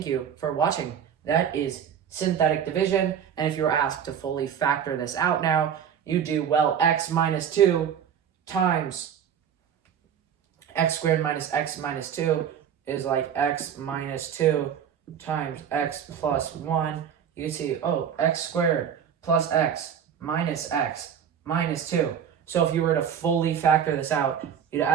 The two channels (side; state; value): left; quieter; 8.4 dB